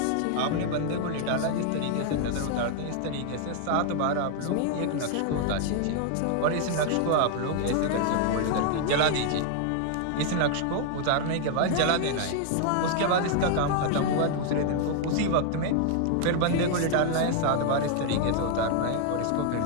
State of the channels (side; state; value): both; different; correlation 0.00